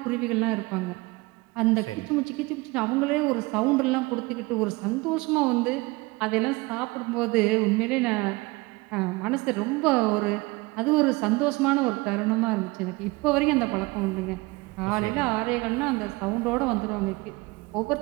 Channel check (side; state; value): left; quieter; 23.5 dB